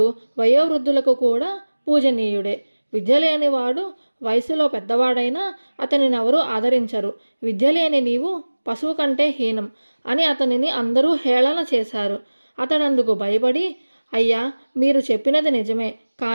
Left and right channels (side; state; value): both; inverted; correlation -1.00